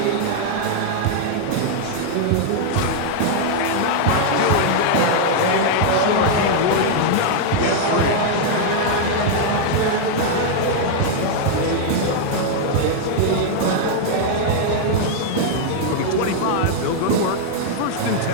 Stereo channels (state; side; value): different; both; correlation -0.01